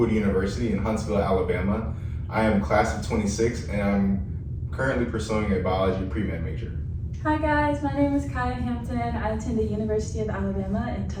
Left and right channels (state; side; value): identical; both; correlation 1.00